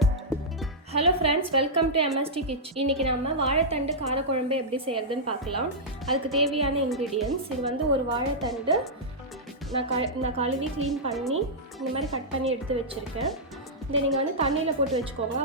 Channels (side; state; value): both; normal; correlation -0.10